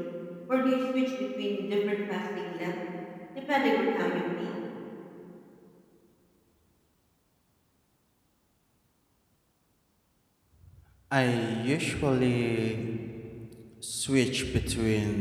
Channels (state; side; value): identical; both; correlation 1.00